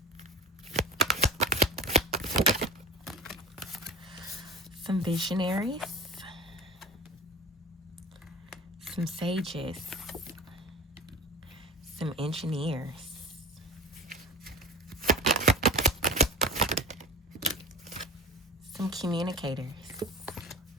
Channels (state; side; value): normal; both; correlation 0.35